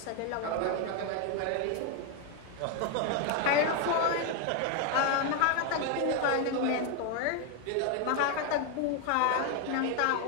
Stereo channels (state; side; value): different; both; correlation 0.01